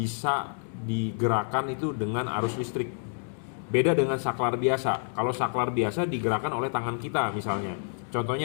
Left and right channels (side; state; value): right; silent; digital silence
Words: digerakkan itu dengan arus listrik. Beda dengan saklar biasa. Kalau saklar biasa digerakkan oleh tangan kita misalnya.